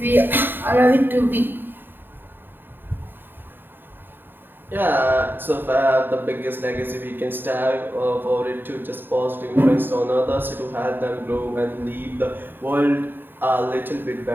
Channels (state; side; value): late; left; 0.095 ms